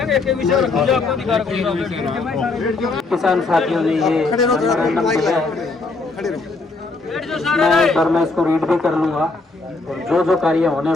किसान साथियों ने ये मैं एक बार मैं इसको रीड भी कर लूंगा और जो कार्य होने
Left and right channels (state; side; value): quieter; right; 3.6 dB